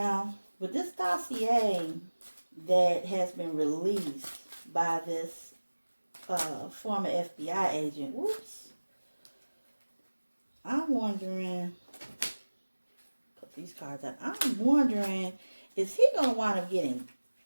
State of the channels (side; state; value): both; inverted; correlation -1.00